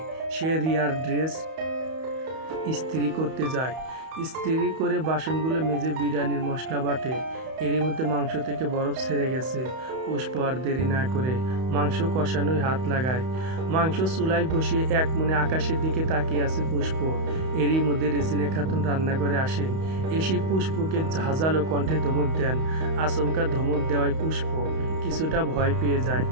সে রিয়ার ড্রেস ইস্ত্রি করতে যায়। ইস্ত্রি করে বাসনগুলো মেজে বিরিয়ানির মশলা বাটে। এরই মধ্যে মাংস থেকে বরফ ছেড়ে গেছে। পুষ্প আর দেরি না করে মাংস কষানোয় হাত লাগায়। মাংস চুলায় বসিয়ে এক মনে আকাশের দিকে তাকিয়ে আছে পুষ্প। এরই মধ্যে রেজিনা খাতুন রান্নাঘরে আসেন। এসে পুষ্পকে ঝাঁঝালো কণ্ঠে ধমক দেন। আচমকা ধমক দেওয়ায় পুষ্প কিছুটা ভয় পেয়ে যায়।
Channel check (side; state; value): left; late; 31 ms